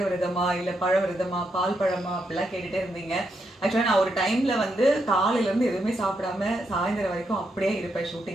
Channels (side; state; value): both; normal; correlation 0.81